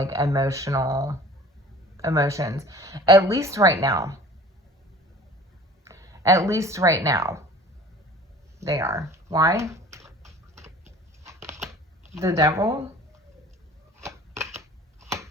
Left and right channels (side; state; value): both; normal; correlation 0.45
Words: emotions, at least right now. At least right now, they are. Why? The Devil.